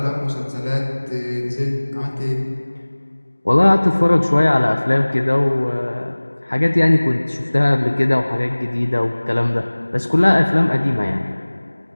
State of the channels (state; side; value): inverted; both; correlation -1.00